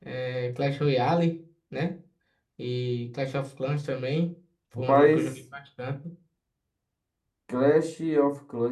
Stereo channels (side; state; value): both; identical; correlation 1.00